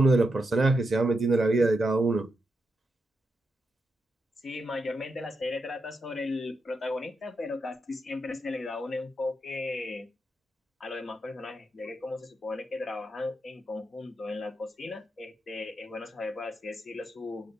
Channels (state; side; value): normal; both; correlation 0.84